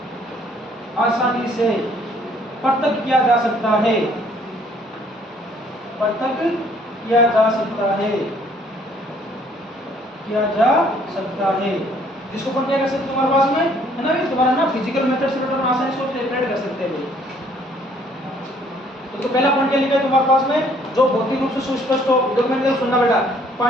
आसानी से पृथक किया जा सकता है, पृथक किया जा सकता है, किया जा सकता है। जिसको अपन क्या कर सकते हैं तुम्हारे पास में, है ना, तुम्हारा ना फिजिकल मेथड से अपन आसानी से सेपरेट कर सकते हैं। तो पहला पॉइंट क्या लिखा है तुम्हारे पास में? जो भौतिक रूप से सुस्पष्ट हो। डॉक्यूमेंट सुनना बेटा,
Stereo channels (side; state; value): both; normal; correlation 0.61